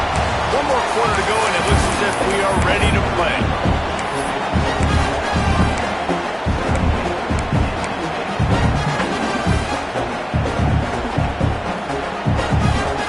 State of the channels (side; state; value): both; identical; correlation 1.00